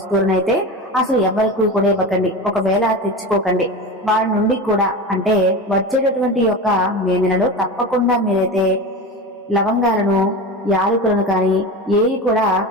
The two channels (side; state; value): both; normal; correlation 0.27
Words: అసలు ఎవరికి కూడా ఇవ్వకండి. ఒకవేళ తెచ్చుకోకండి. వారి నుండి కూడా అంటే వచ్చేటటువంటి యొక్క మే నెలలో తప్పకుండా మీరైతే లవంగాలను, యాలకులను కానీ ఏవి కూడా